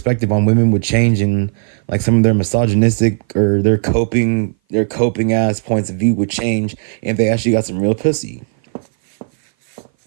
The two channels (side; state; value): left; silent; 58 dB below the other